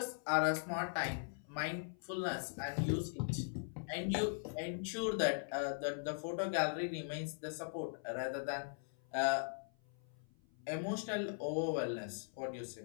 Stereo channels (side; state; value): right; silent; 51 dB below the other